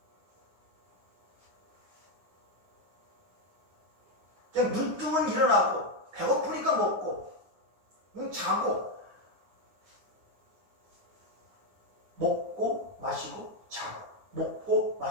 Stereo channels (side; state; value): left; late; 9.7 ms